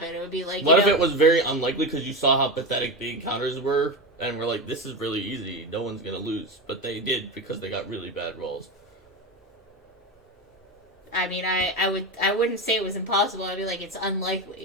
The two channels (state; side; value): normal; both; correlation 0.18